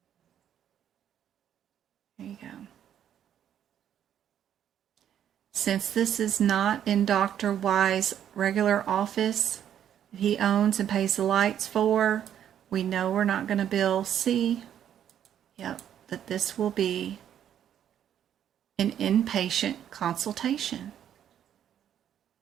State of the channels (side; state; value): left; quieter; 9.9 dB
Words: There you go. Since this is not in Dr. Y's regular office that he owns and pays the lights for, we know we're not going to bill C. Yep, that this will be an inpatient consultation.